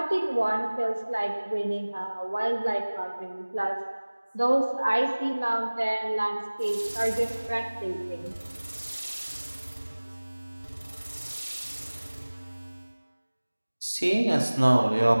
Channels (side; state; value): both; inverted; correlation -1.00